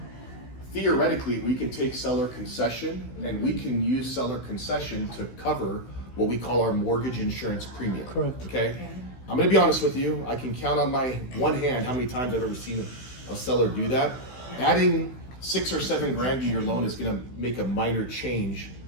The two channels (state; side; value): late; right; 16 ms